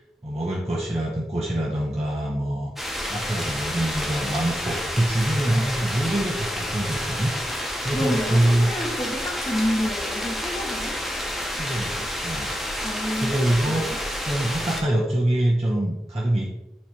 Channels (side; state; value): both; normal; correlation 0.89